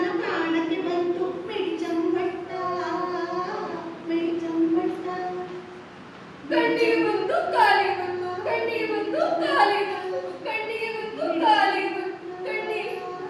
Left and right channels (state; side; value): identical; both; correlation 1.00